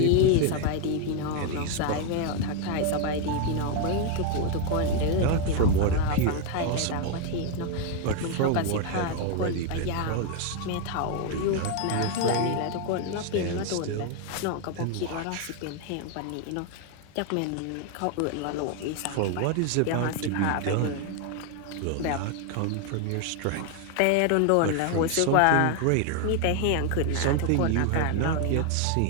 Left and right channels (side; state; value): both; different; correlation 0.01